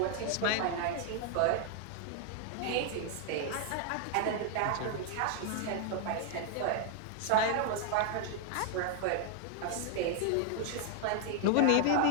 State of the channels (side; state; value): both; different; correlation 0.00